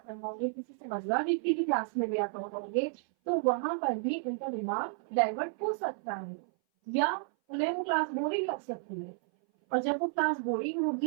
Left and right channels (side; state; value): left; silent; 56 dB below the other